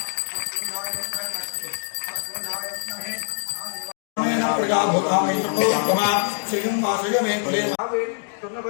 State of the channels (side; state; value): right; silent; digital silence